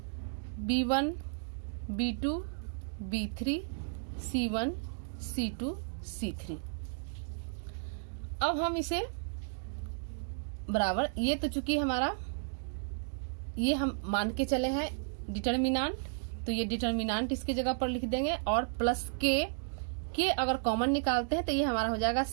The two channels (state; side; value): silent; left; digital silence